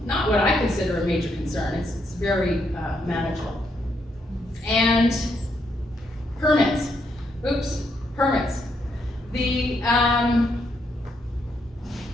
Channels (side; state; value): both; normal; correlation 0.77